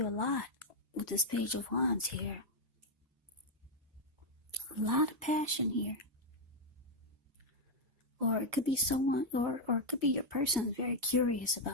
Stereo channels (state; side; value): normal; both; correlation 0.00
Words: a lot with this Page of Wands here. A lot of passion here. Or it could be someone, or it could be your person is very curious